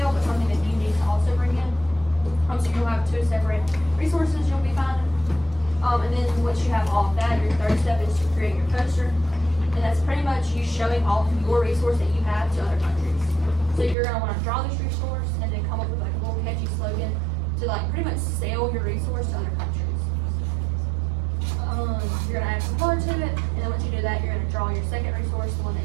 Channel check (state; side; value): drops out; left; at 14.0 s